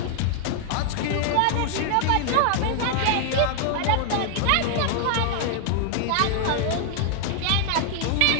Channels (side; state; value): both; different; correlation 0.00